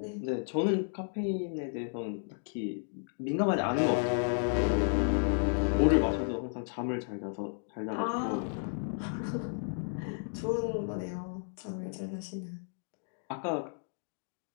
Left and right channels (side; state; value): right; silent; digital silence